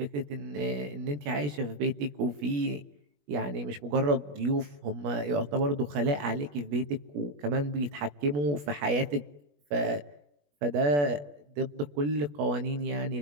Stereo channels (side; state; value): left; late; 21 ms